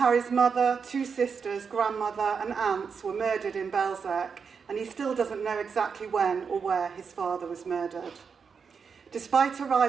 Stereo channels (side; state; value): left; quieter; 5.9 dB